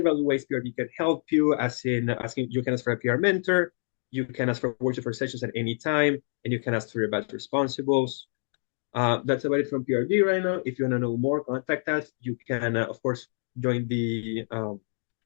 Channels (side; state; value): right; silent; digital silence